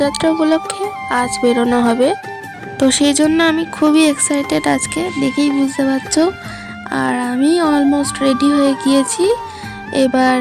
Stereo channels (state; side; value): identical; both; correlation 1.00